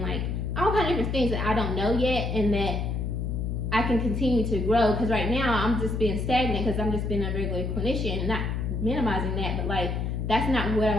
all kind of different things that I don't know yet, and that I can continue to grow. Because right now I'm just being stagnant because I'm just being a regular clinician, not minimizing that, but that's not what I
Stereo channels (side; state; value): left; noise; hum, 1 dB below the sound